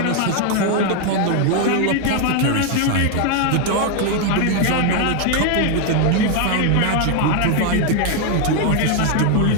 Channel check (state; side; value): different; both; correlation 0.01